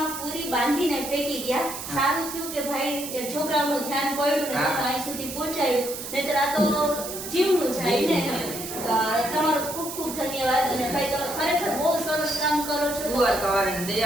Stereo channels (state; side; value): noise; right; hiss, 8 dB below the sound